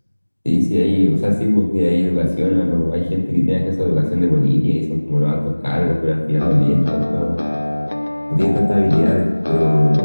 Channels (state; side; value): inverted; both; correlation -1.00